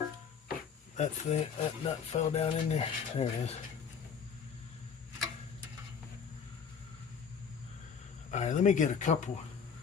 That nut fell down in there. There it is. All right, let me get a couple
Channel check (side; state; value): right; quieter; 6.7 dB